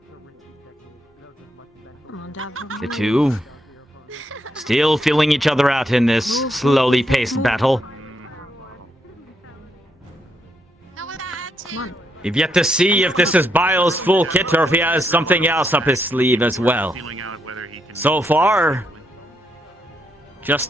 Come on, Davril. The two still feeling each other out in this slowly paced battle. Come on. We've yet to see if this is Bile's full kit or if he has something else up his sleeve as well. So far, just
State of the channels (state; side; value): normal; both; correlation 0.79